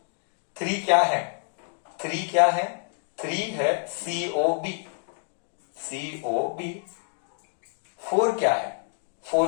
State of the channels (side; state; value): right; silent; 60 dB below the other